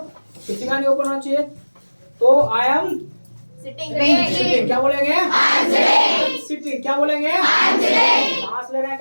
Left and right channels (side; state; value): both; inverted; correlation -1.00